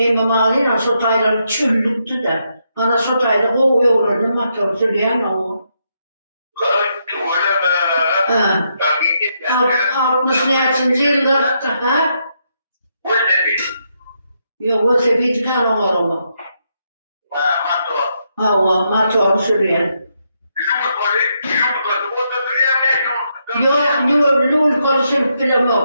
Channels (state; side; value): inverted; both; correlation -0.79